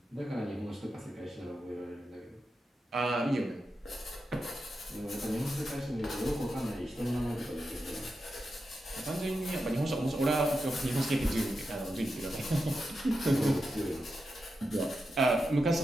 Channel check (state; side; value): normal; both; correlation 0.89